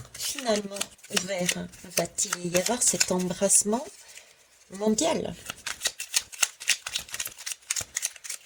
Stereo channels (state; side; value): identical; both; correlation 1.00